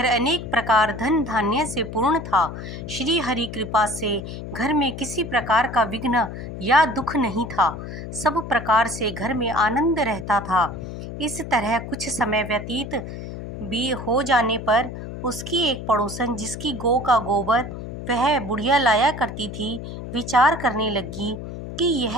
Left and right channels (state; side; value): noise; left; hum, 9 dB below the sound